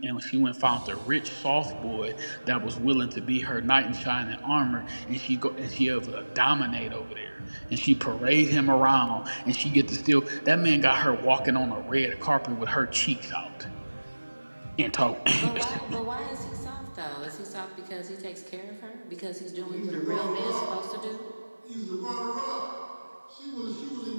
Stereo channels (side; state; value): both; inverted; correlation -1.00